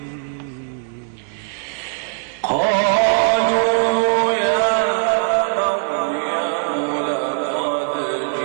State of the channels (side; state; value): left; silent; digital silence